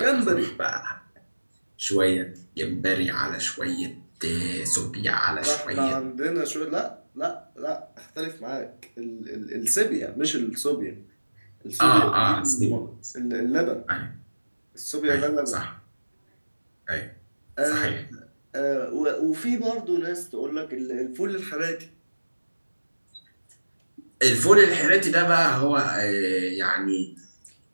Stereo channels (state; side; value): inverted; both; correlation -1.00